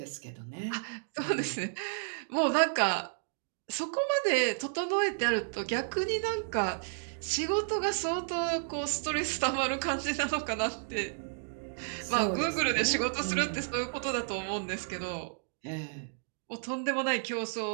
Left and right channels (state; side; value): silent; left; digital silence